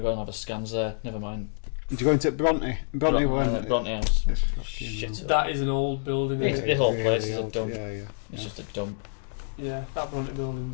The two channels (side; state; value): right; silent; digital silence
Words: and have a scans there. Never mind. did you go into Bronte? Bronte went. Bronte House. It's fucking Shit. That is an old building. It's- Isn't the it? whole really place is a old. dump. Yeah. It's just a dump. Yeah, that Bronte